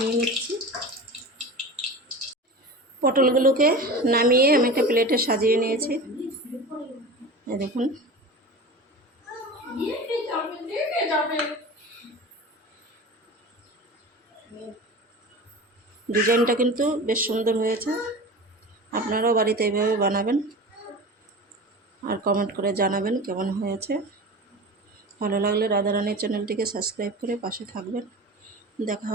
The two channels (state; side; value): normal; both; correlation 0.32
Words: নিচ্ছি। পটলগুলোকে নামিয়ে আমি একটা প্লেটে সাজিয়ে নিয়েছি। এই দেখুন, ডিজাইনটা কিন্তু বেশ সুন্দর হয়েছে। আপনারাও বাড়িতে এইভাবে বানাবেন আর কমেন্ট করে জানাবেন কেমন হয়েছে। ভালো লাগলে রাধারানীর চ্যানেলটিকে সাবস্ক্রাইব করে পাশে থাকবেন। দেখা